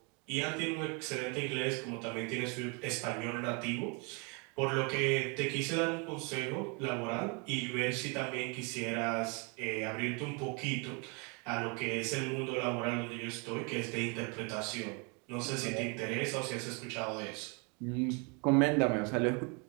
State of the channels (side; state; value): left; quieter; 33.3 dB